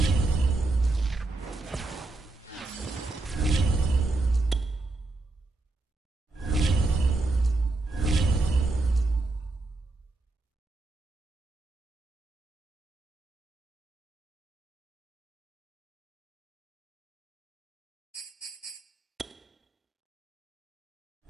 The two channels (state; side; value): quieter; left; 3.1 dB